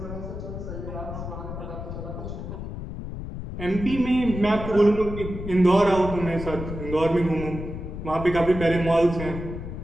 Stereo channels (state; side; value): noise; left; rumble, 8 dB below the sound